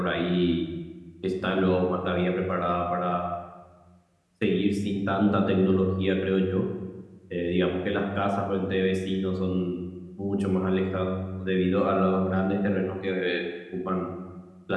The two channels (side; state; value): both; identical; correlation 1.00